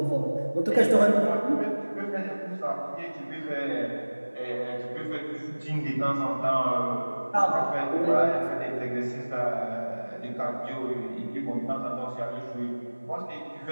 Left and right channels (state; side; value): inverted; both; correlation -1.00